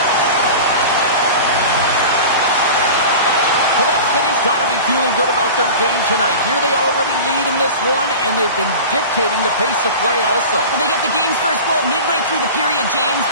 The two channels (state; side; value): inverted; both; correlation -0.34